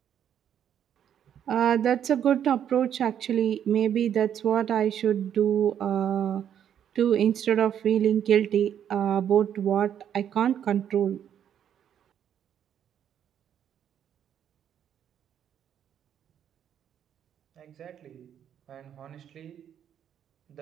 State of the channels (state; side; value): quieter; left; 9.4 dB